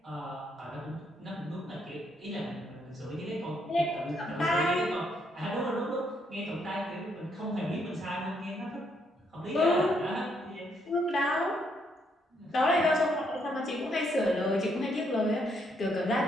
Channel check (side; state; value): both; normal; correlation 0.73